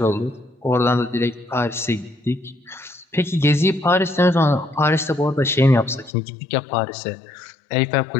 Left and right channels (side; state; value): right; drops out; at 6.1 s